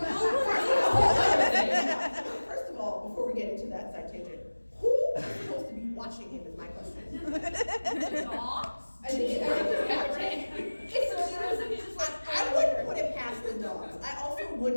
first of all, before we get into that side tangent, who is supposed to be watching him is my question. Dogs? I think I wouldn't put it past the dogs. I also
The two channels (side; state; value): both; inverted; correlation -1.00